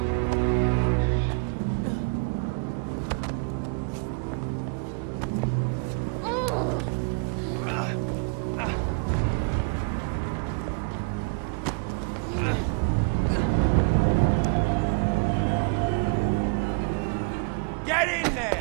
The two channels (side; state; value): left; quieter; 35.0 dB